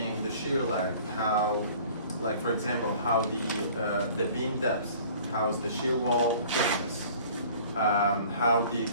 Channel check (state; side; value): inverted; both; correlation -0.49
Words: the shear lag. How, like for example, how the beam depth, how's the shear wall thickness, how the